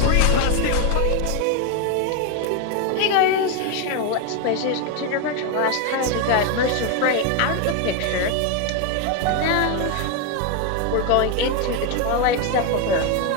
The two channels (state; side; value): different; both; correlation 0.01